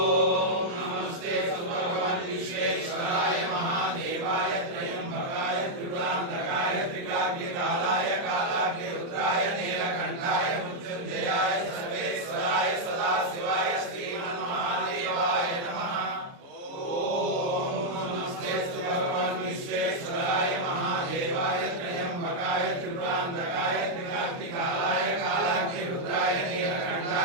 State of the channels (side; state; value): left; late; 29 ms